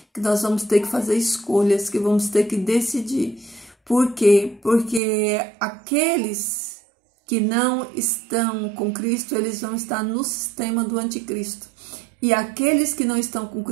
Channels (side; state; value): left; drops out; at 5.0 s